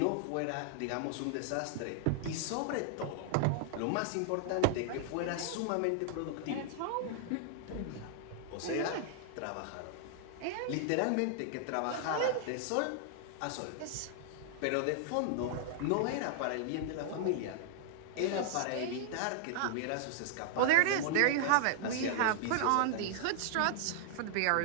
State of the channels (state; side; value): different; both; correlation 0.00